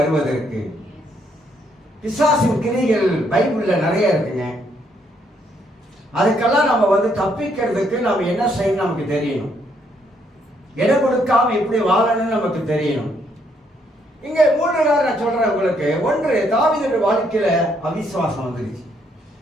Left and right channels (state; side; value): normal; both; correlation 0.72